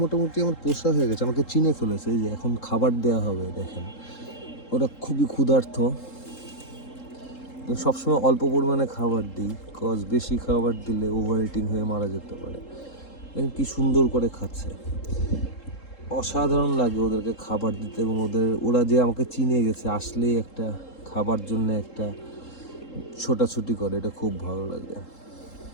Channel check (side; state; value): right; late; 3.7 ms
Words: মোটামুটি আমার পোষা হয়ে গেছে, আমাকে চিনে ফেলেছে। এই যে এখন খাবার দেওয়া হবে, দেখেন ওরা খুবই ক্ষুধার্ত। সবসময় অল্প পরিমাণে খাবার দিই, কজ বেশি খাবার দিলে ওভার ইটিং হয়ে মারা যেতে পারে। দেখেন কি সুন্দর করে খাচ্ছে, অসাধারণ লাগে ওদেরকে খাবার দিতে। এবং ওরা যে আমাকে চিনে গেছে, আসলেই একটা খাবার জন্য একটা ছোটাছুটি করে, এটা খুব ভালো লাগে।